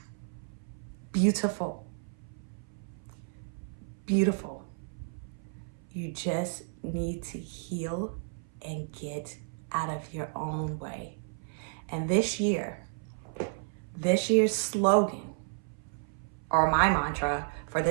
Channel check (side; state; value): left; silent; 56 dB below the other